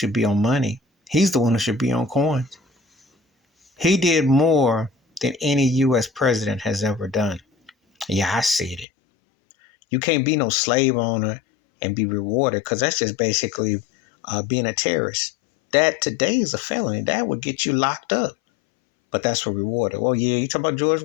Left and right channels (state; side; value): drops out; right; at 8.8 s